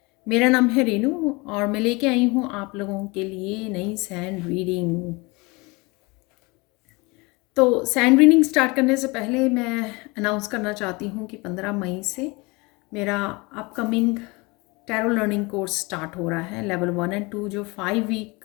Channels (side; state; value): right; quieter; 25.8 dB